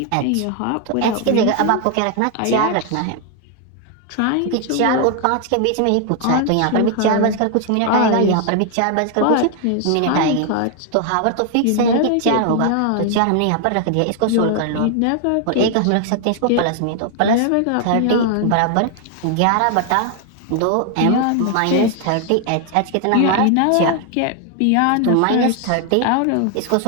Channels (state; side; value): different; both; correlation 0.00